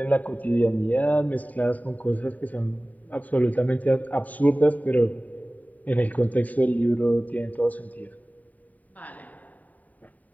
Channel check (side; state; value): right; late; 0.074 ms